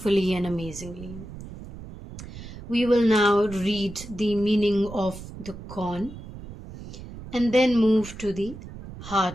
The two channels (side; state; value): right; noise; rumble, 13 dB below the sound